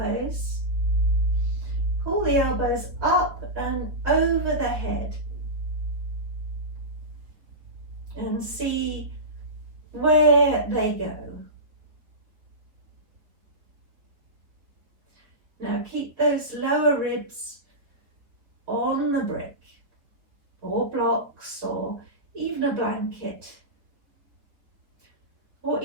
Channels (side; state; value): left; late; 3.9 ms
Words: Pull the elbows up and over the head. And see where they go. Now keep those lower ribs on the brick or blocks or even a blanket or